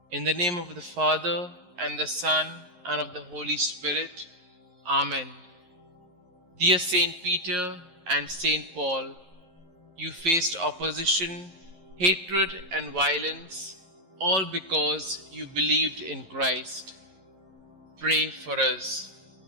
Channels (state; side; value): late; left; 11 ms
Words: In the name of the Father, and the Son, and of the Holy Spirit. Amen. Dear Saint Peter and Saint Paul, you faced opposition, hatred, and violence, all because you believed in Christ. Pray for us.